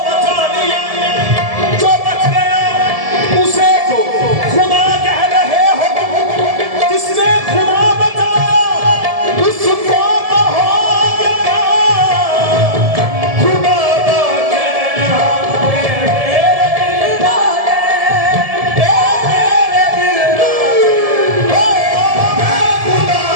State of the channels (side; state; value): left; late; 1.7 ms